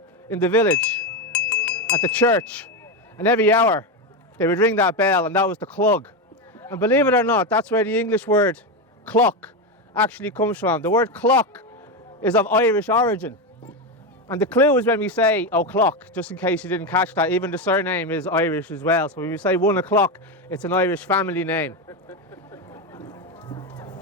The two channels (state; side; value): normal; both; correlation 0.12